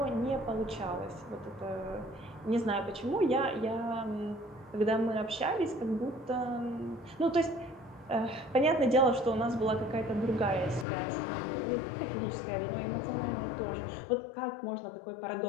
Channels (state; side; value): drops out; right; at 10.9 s